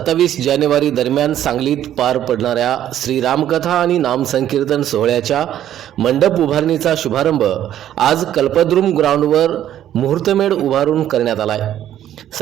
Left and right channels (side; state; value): left; quieter; 11.4 dB